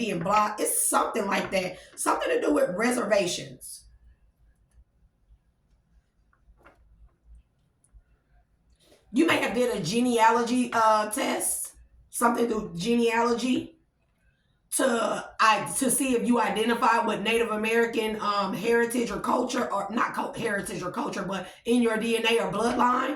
blocked. It's something like that. Something to do with reservations. You may have did a genealogy test, something through genealogy to see if you identify with Native American heritage or culture, or not heritage or culture, but in your DNA or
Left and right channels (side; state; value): both; identical; correlation 1.00